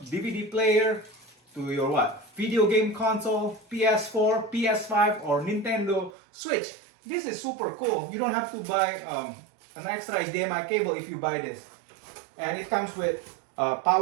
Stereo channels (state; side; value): drops out; left; at 6.2 s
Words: DVD player, to your what? Video game console, PS4, PS5, or Nintendo Switch. This is super cool. You don't have to buy an extra HDMI cable if you buy this. And it comes with a